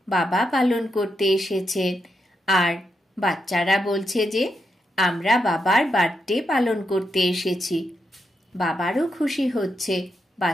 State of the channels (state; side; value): normal; both; correlation 0.83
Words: বাবা পালন করতে এসেছেন। আর বাচ্চারা বলছে যে আমরা বাবার বার্থডে পালন করতে এসেছি। বাবারও খুশি হচ্ছে,